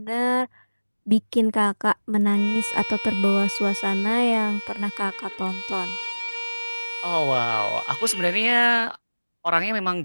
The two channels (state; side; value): inverted; both; correlation -1.00